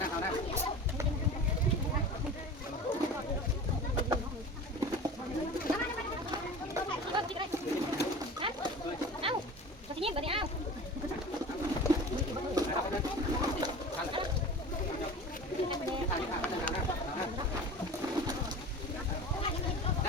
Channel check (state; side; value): normal; both; correlation 0.36